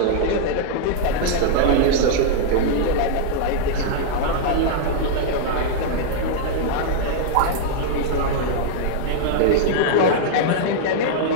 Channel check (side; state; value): both; different; correlation -0.01